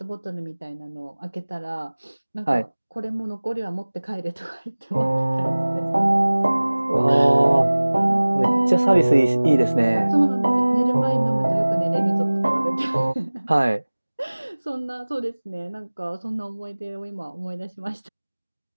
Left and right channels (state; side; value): inverted; both; correlation -1.00